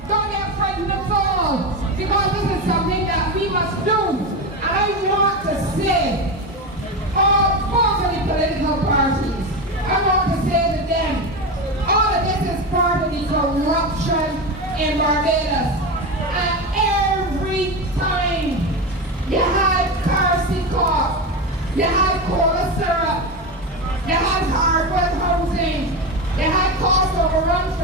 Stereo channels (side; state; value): both; normal; correlation 0.18